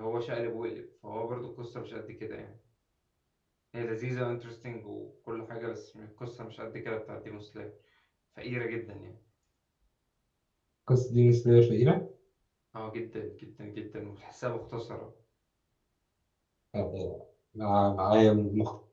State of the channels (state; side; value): identical; both; correlation 1.00